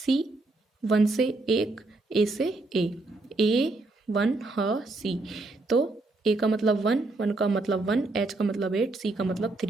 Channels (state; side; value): quieter; left; 3.1 dB